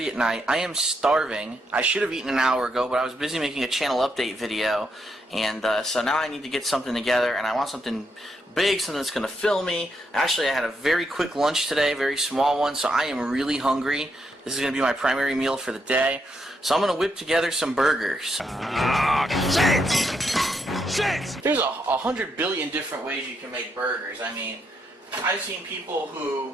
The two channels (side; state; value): both; normal; correlation 0.79